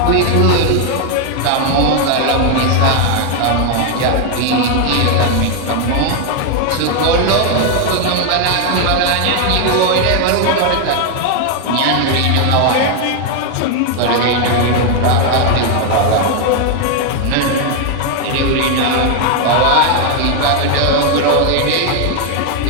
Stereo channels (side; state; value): both; different; correlation 0.01